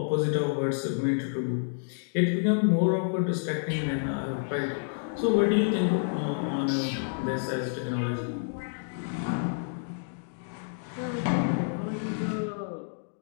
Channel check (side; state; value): right; silent; digital silence